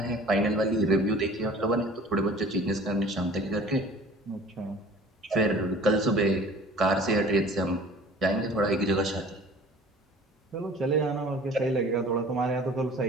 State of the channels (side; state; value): both; normal; correlation 0.47